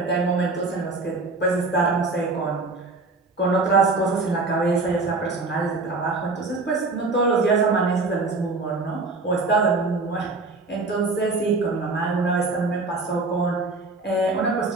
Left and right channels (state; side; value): quieter; left; 3.6 dB